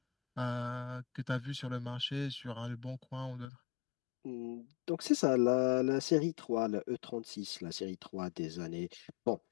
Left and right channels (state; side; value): drops out; right; at 3.5 s